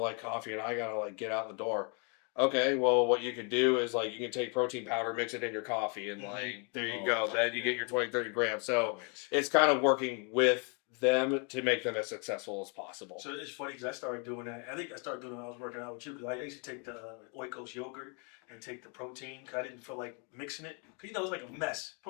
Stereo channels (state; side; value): quieter; right; 36.4 dB